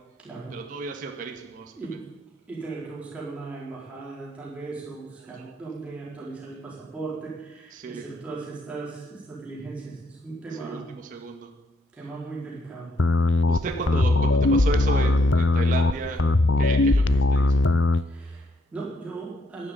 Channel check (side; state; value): both; normal; correlation 0.73